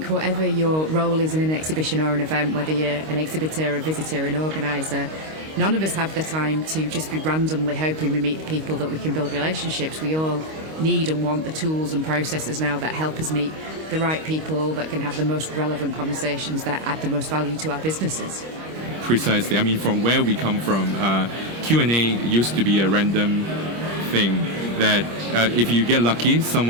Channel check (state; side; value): late; left; 25 ms